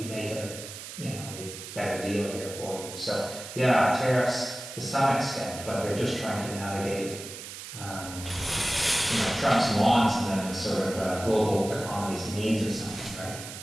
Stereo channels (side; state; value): right; noise; hiss, 11 dB below the sound